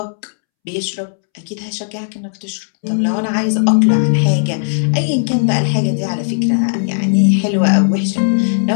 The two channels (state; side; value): silent; right; 69 dB below the other